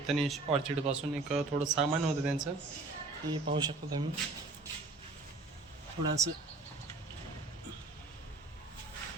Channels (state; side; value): quieter; left; 3.5 dB